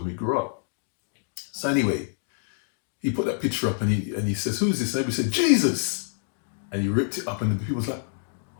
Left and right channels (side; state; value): right; silent; digital silence